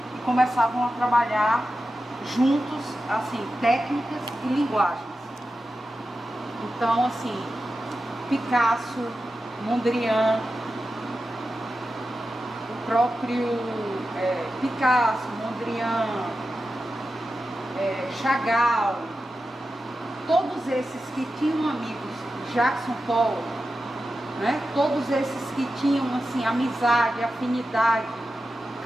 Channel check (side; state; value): both; normal; correlation 0.92